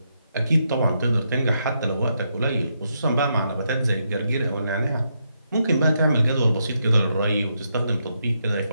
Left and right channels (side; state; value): both; inverted; correlation -0.80